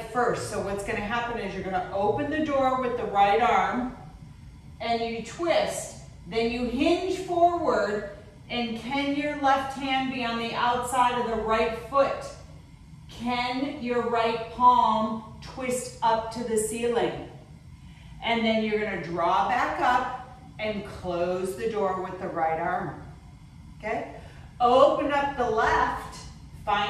first. So what's gonna happen is you're gonna open the door with the right arm and you twist, then you hinge forward. And can your left hand be on the outside of the right foot? Can your right palm twist up to the ceiling? And then you're going to draw back up and close the door with the right arm. Okay? Open up the left,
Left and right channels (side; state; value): both; identical; correlation 1.00